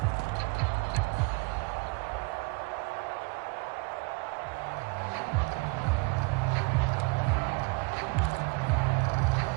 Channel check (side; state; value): left; quieter; 27.9 dB